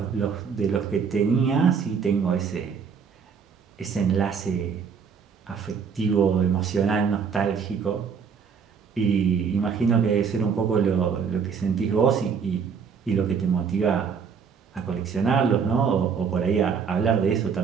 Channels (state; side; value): quieter; left; 6.3 dB